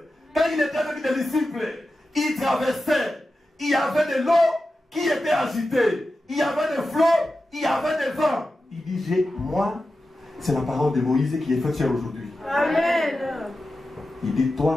quand il était avec des disciples, il traversait. Il y avait de l'eau qui était agitée. Il y avait des flots, il y avait des vents. Il dit, moi, c'est la parole de Moïse qui est faite chair aujourd'hui. Amen. Il dit,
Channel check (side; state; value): both; normal; correlation 0.92